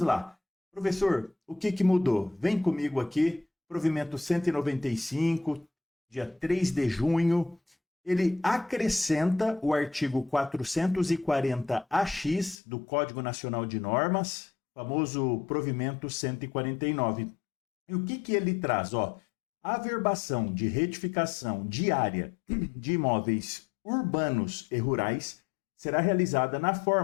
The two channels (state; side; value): drops out; right; at 12.6 s